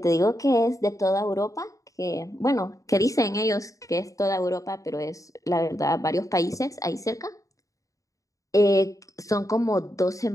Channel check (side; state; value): right; late; 0.16 ms